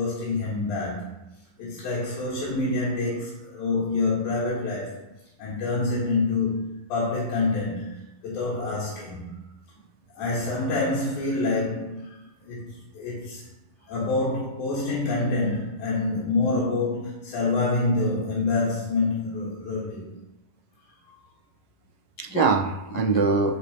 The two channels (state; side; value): late; right; 11 ms